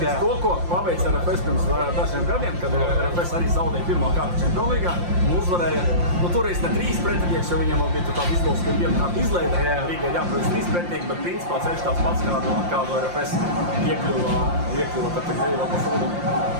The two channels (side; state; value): left; late; 5.7 ms